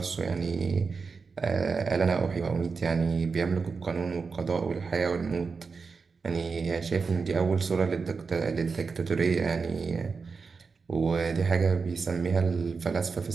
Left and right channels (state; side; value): quieter; left; 4.9 dB